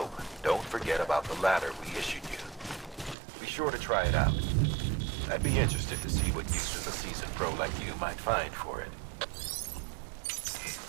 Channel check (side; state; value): left; drops out; at 3.2 s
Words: don't forget about the ladder we issued you. Be sure to try it out. I'd be interested to see what uses a seasoned pro like you might find for it.